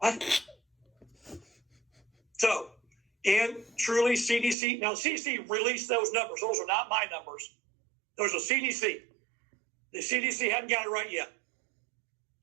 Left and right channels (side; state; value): left; drops out; at 4.5 s